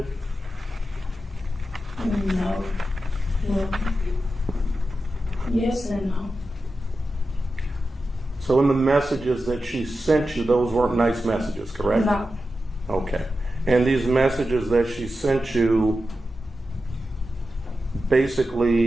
No. Well, yes and no. So in the messages that she sent you, those weren't nice messages, correct? No. Okay. And these messages that she sent you,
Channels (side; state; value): both; normal; correlation 0.91